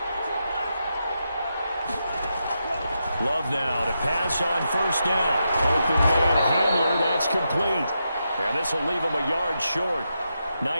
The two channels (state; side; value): inverted; both; correlation -0.85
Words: Love now to pass on first down. Open man Hamler, that's complete. And this will leave him a yard short.